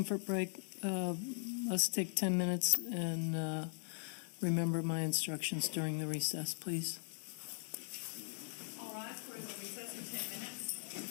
break. Let's take 10 minutes and remember my instructions during the recess, please. All right, we're in the recess for 10 minutes.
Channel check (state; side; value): silent; right; digital silence